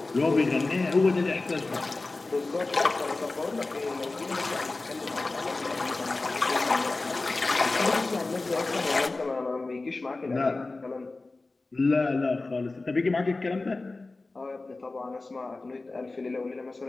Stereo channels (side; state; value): right; quieter; 3.3 dB